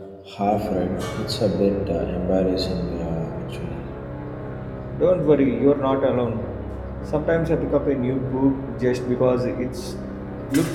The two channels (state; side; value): identical; both; correlation 1.00